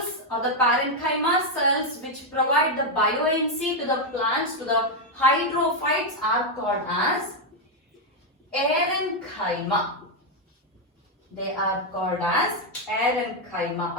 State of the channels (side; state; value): both; normal; correlation 0.01